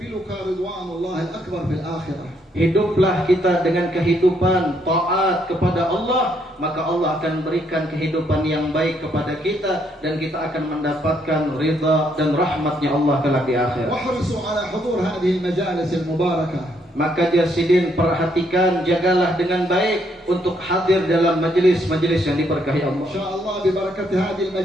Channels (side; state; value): both; normal; correlation 0.72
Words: رضوان الله الأكبر في الآخرة. Hiduplah kita dengan kehidupan taat kepada Allah, maka Allah akan berikan kehidupan yang baik kepada kita dan kita akan mendapatkan ridha dan rahmatnya Allah kelak di akhirat. واحرصوا على حضور هذه المجالس المباركة. Maka Jasidin, perhatikan, jagalah dengan baik untuk hadir dalam majelis-majelis yang diberkahi Allah. إن شاء الله ببركة هذه